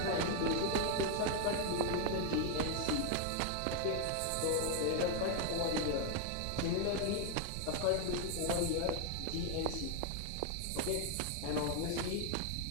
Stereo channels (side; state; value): both; different; correlation 0.00